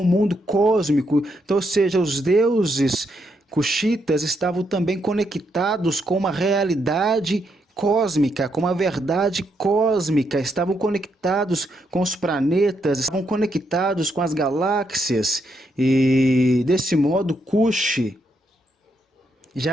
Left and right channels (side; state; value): both; normal; correlation 0.78